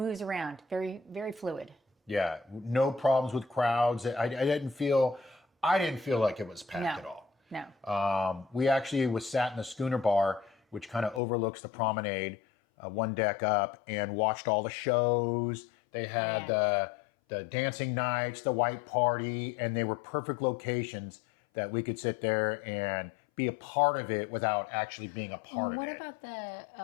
around. Very, very fluid. Yeah, no problems with crowds. I didn't feel like it was packed at all. No. We actually was sat in the schooner bar, which kind of overlooks the promenade, one deck up, and watched all the shows. They had the dancing nights, the white party, and they were perfect locations that we could sit there and be a part of it without actually being a part of it. What about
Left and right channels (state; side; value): drops out; right; at 11.2 s